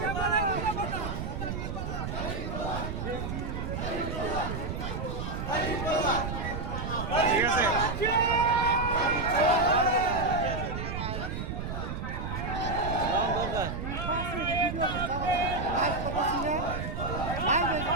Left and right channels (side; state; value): right; noise; rumble, 4 dB below the sound